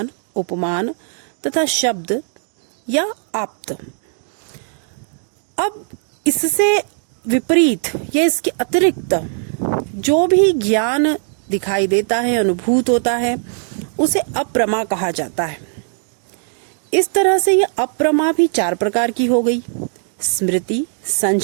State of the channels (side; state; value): left; silent; 67 dB below the other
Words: उपमान तथा शब्द या आप्त। अब इससे विपरीत या इसके अतिरिक्त जो भी ज्ञान दिखाई देता है, अनुभूत होता है, उसे अप्रमा कहा जाता है। इस तरह से यह अप्रमा भी चार प्रकार की हो गई: स्मृति,